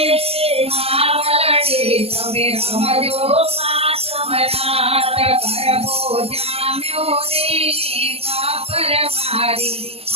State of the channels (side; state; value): left; late; 0.29 ms